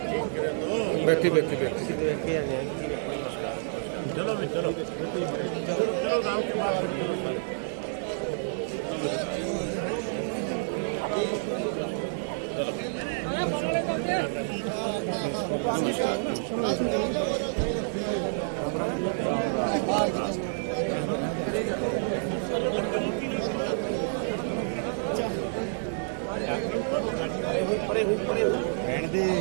बैठी बैठी बैठी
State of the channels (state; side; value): silent; left; digital silence